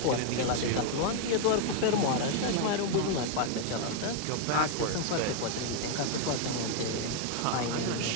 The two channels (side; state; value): both; different; correlation 0.00